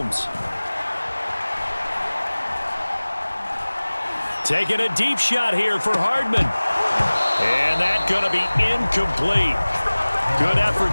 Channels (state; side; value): inverted; both; correlation -1.00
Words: Taking a deep shot here for Hardman. And that's going to be incomplete. Good